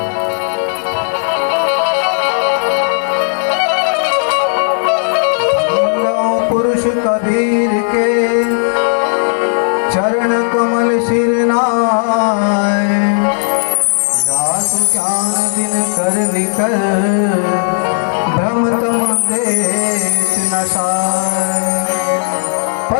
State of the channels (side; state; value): right; silent; digital silence